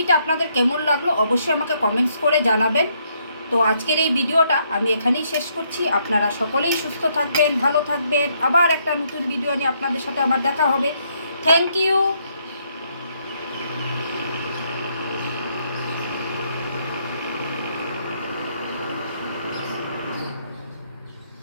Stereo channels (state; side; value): inverted; both; correlation -0.72